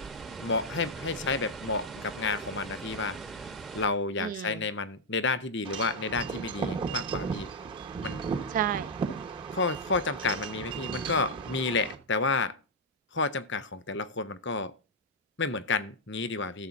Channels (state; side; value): normal; both; correlation -0.02